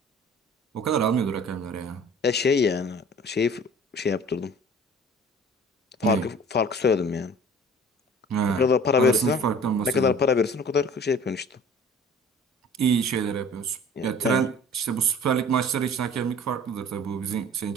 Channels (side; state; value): both; normal; correlation 0.46